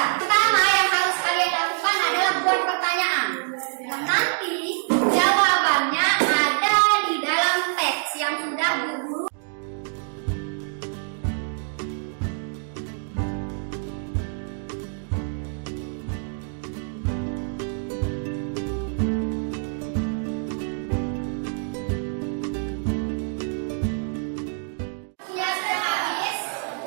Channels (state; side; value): silent; left; 61 dB below the other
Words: Pertama yang harus kalian lakukan adalah buat pertanyaan. Dan nanti jawabannya ada di dalam teks yang sudah guru.